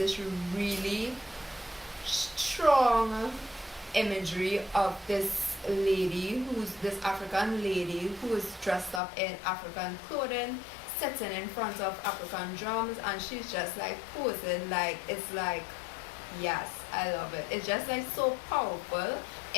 really strong imagery of this African lady who is dressed up in African clothing, sitting in front of African drums, and she's just like posing. Like, it's like, yes, I love it. It's just like so powerful.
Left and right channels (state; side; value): drops out; right; at 9.0 s